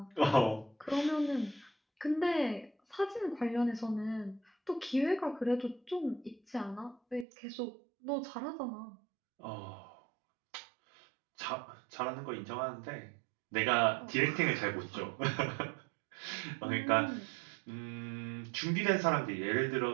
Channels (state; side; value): drops out; left; at 7.2 s